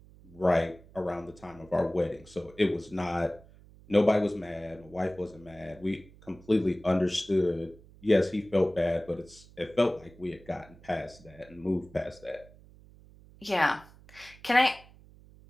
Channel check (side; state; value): right; noise; hum, 23 dB below the sound